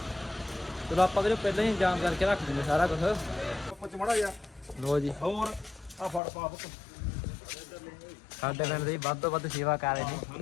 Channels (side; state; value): right; drops out; at 6.2 s